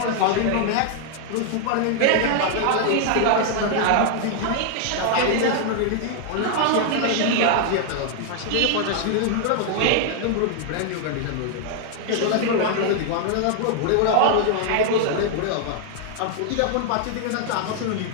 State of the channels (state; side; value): different; both; correlation 0.00